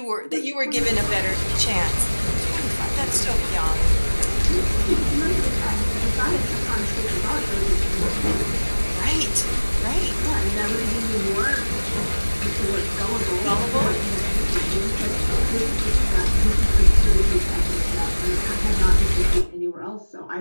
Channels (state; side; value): inverted; both; correlation -1.00